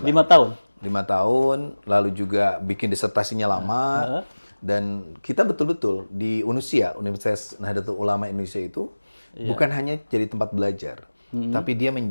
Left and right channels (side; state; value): both; inverted; correlation -1.00